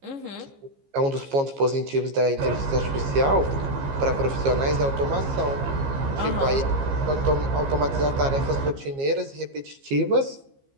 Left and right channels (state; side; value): late; left; 15 ms